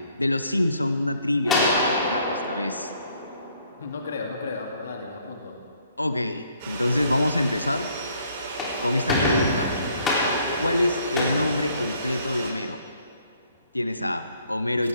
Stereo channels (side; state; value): both; inverted; correlation -0.65